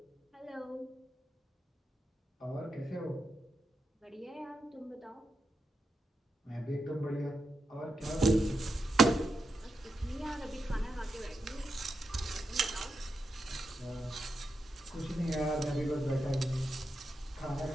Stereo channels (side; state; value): both; normal; correlation 0.87